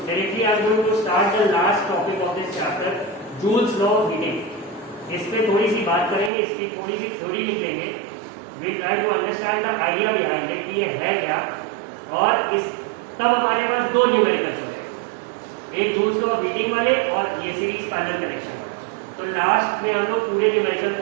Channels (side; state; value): left; drops out; at 6.3 s